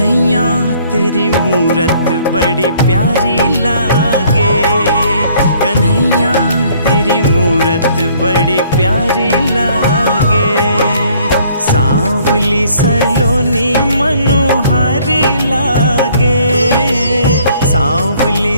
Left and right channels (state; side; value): inverted; both; correlation -0.61